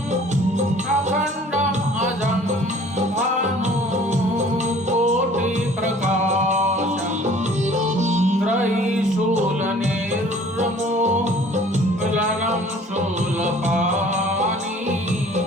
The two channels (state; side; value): normal; both; correlation 0.52